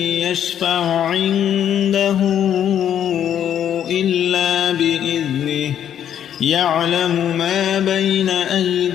يشفع عنده إلا بإذنه يعلم ما بين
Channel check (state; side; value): quieter; right; 9.8 dB